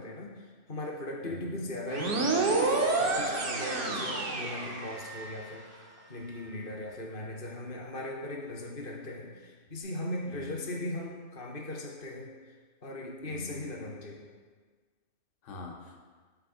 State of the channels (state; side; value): late; right; 2.6 ms